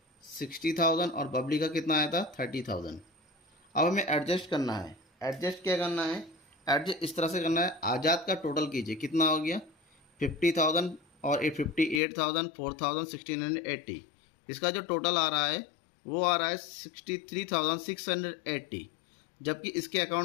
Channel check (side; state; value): right; drops out; at 12.0 s